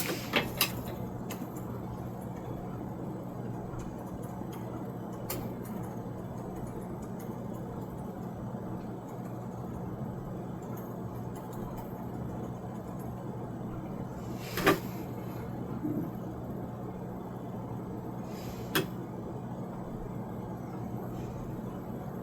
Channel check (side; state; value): both; identical; correlation 1.00